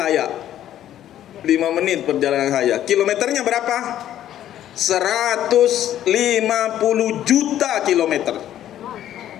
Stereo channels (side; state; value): right; quieter; 11.7 dB